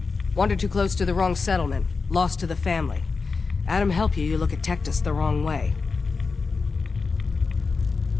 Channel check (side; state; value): right; quieter; 4.5 dB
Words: Wandered too close to the wrong settlement. Lost to the family. Adam help you, you look at Tectus the wrong way.